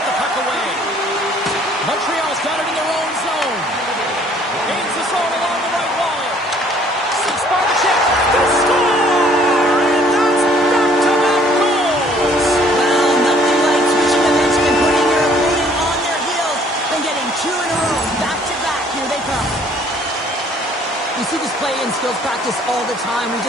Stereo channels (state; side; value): normal; both; correlation 0.59